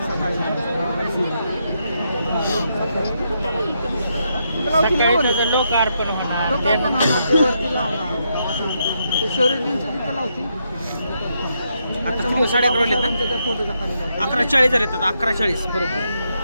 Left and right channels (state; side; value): inverted; both; correlation -0.80